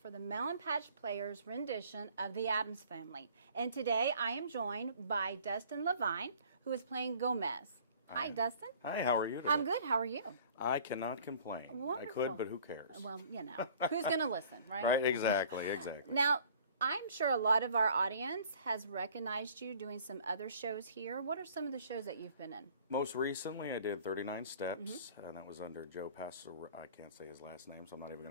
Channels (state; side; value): inverted; both; correlation -0.53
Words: for the Melon Patch Players rendition of the Addams Family. And today I am joined by Dustin Levine, who is playing Gomez. Hi, Dustin. Hi, how are you today? I'm good. How are you? I cannot complain. Wonderful. I could, but who cares? Well, you know, who's going to listen, right? Right, exactly. Now, I'm sure a lot of our audience has recognized you doing some other shows here. What are some of the shows that you've been in? Most recently, I did 39 Steps, and that was under Joe Passero. I can't say his last name, so I'm not even going